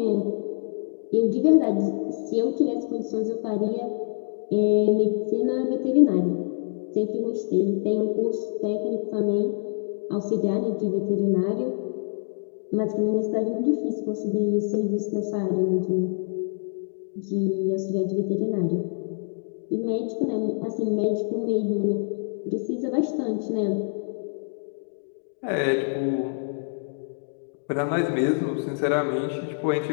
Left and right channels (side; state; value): right; silent; digital silence